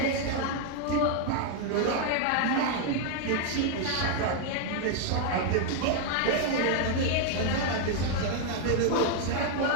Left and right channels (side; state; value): both; different; correlation 0.00